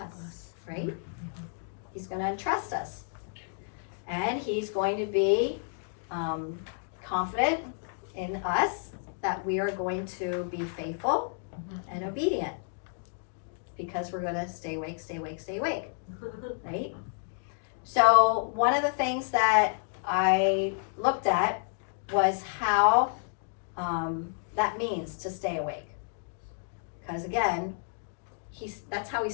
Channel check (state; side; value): silent; right; digital silence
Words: right? He's going to entrust us. And he's going to be confident in us that we are going to be faithful and obedient. Because we're going to stay awake, stay awake, stay awake, right? So one of the things that I looked at was how that means to stay awake. Because again, that's how he